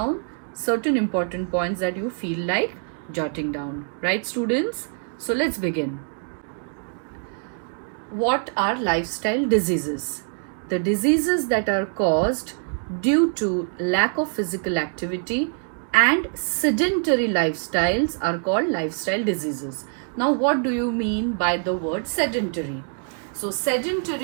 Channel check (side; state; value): left; silent; 62 dB below the other